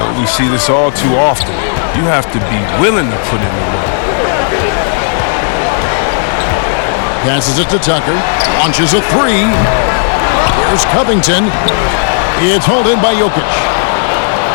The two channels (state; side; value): silent; right; digital silence